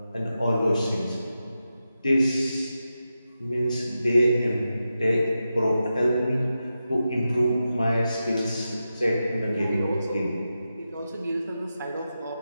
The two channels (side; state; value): both; inverted; correlation -0.90